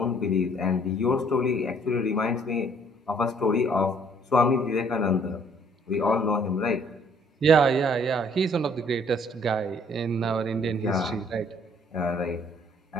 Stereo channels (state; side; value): normal; both; correlation 0.61